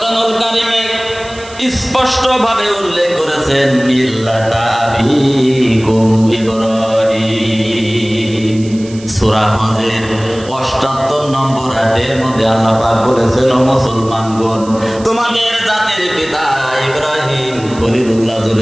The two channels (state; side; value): noise; right; hiss, 19 dB below the sound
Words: কারীমে স্পষ্ট ভাবে উল্লেখ করেছেন মিল্লাতা আবিকুম ইব্রাহিম। সূরা হজের ৭৮ নম্বর আয়াতের মধ্যে আল্লাহ পাক বলেছেন, ও মুসলমানগণ, তোমাদের জাতির পিতা ইব্রাহিম খলিলুল্লাহ।